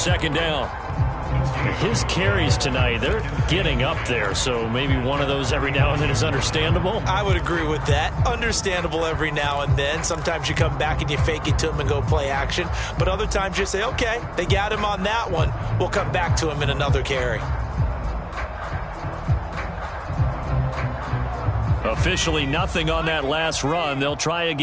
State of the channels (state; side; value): identical; both; correlation 1.00